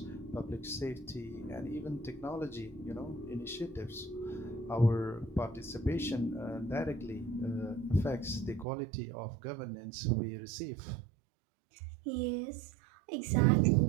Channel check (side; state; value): left; drops out; at 8.7 s